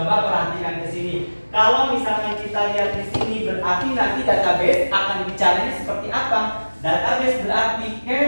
perhatikan ke sini. Kalau misalkan kita lihat di sini, berarti nanti database akan bicaranya seperti apa? Database berarti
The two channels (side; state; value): both; inverted; correlation -1.00